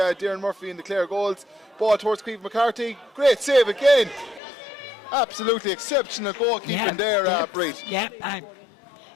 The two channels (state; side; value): drops out; right; at 4.4 s